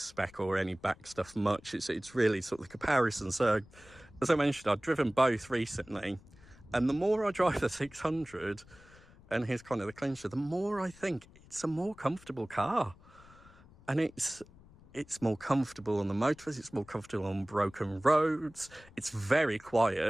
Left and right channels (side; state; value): left; noise; rumble, 24 dB below the sound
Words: or any back stuff much. It's really sort of the comparison. So as I mentioned, I've driven both recently, and the more I drive the 600, and here's kind of the clincher, the more I think it's a more comfortable car. And it's more comfortable on the motorways, it's more comfortable on broken roads, it's very